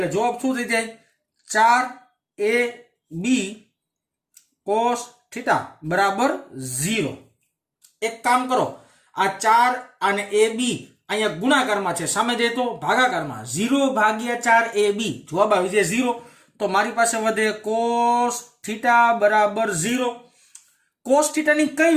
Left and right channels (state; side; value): identical; both; correlation 1.00